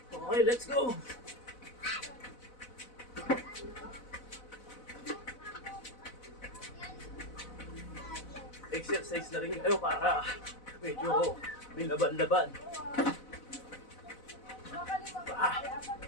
Okay, let's go. Exercise na rin kayo para medyo may laban-laban.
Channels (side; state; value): right; late; 4.0 ms